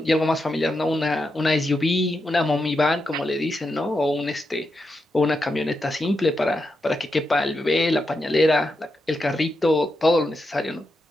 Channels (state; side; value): normal; both; correlation 0.86